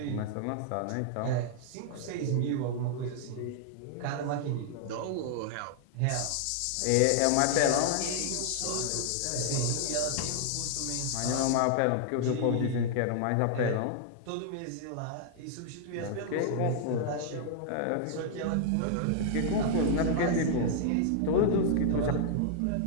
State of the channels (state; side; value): different; both; correlation -0.01